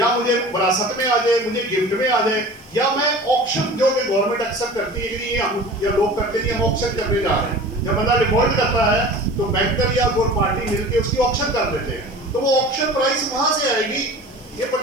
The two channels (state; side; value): noise; right; hiss, 30 dB below the sound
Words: मुझे विरासत में आ जाए, मुझे गिफ्ट में आ जाए, या मैं ऑक्शन जो कि गवर्नमेंट एक्सेप्ट करती है कि हम या लोग करते हैं, हम ऑक्शन करने जा रहे हैं। जब बंदा डिफॉल्ट करता है तो बैंकर या कोई पार्टी मिलके उसकी ऑक्शन कर देते हैं, तो वो ऑक्शन प्राइस वहां से आएगी। ये